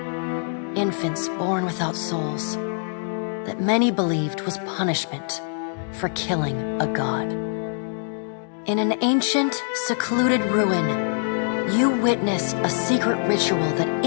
infants born without souls, that many believed was punishment for killing a god. In an ancient, secluded ruin, you witnessed a secret ritual that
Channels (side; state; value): right; silent; digital silence